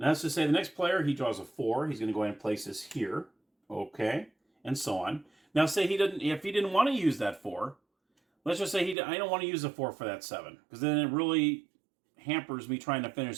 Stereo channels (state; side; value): drops out; left; at 9.0 s